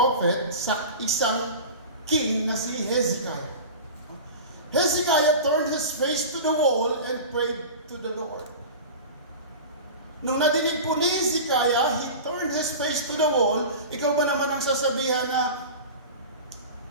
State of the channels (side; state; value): both; inverted; correlation -0.32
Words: sa isang king na si Hezekiah. Hezekiah turned his face to the wall and prayed to the Lord. Nung nadinig po ni Hezekiah, he turned his face to the wall. Ikaw ba naman ang sasabihan na